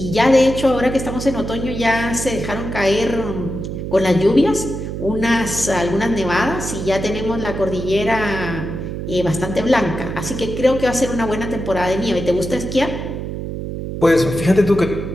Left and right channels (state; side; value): noise; right; hum, 6 dB below the sound